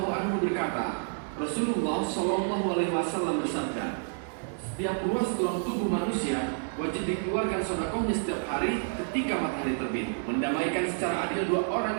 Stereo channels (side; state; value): left; silent; digital silence